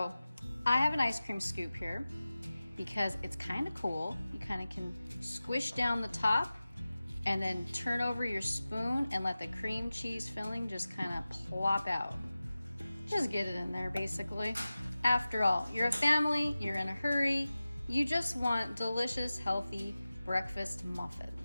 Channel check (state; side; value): inverted; both; correlation -0.96